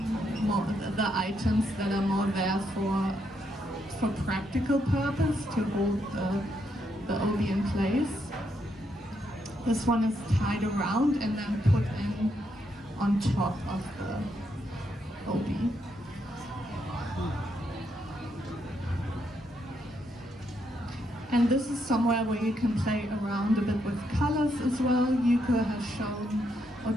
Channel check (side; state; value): both; normal; correlation 0.78